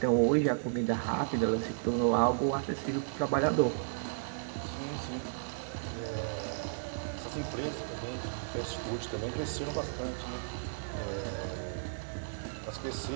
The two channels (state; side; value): silent; left; digital silence